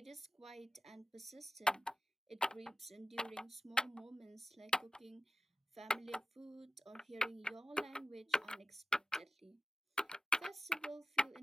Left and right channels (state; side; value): normal; both; correlation 0.93